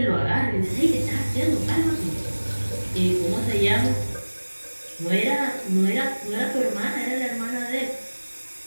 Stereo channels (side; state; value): both; inverted; correlation -1.00